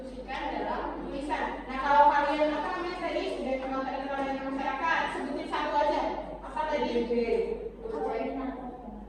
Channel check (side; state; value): both; identical; correlation 1.00